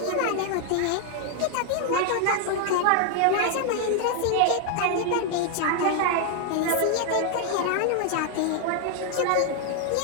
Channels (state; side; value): different; both; correlation 0.00